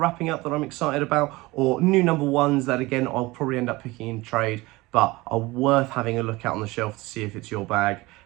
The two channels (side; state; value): left; quieter; 21.2 dB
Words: up that I'm excited about, or new number ones that again I'll probably end up picking in trade but are worth having a look at on the shelf to see if it's your bag,